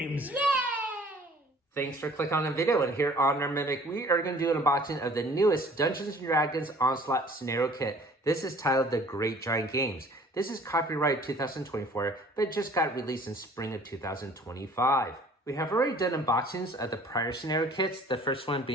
Yay! Thanks for clicking on the video, and here on our Mimic, we are going to do an unboxing of the newest Dungeons & Dragons Onslaught Scenario Kit. This is titled The Great Giant Games. This is copyright 2024, but it just got released in spring of 2025. We have already done unboxings of the prior scenario kits, the first one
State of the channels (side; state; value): both; normal; correlation 0.52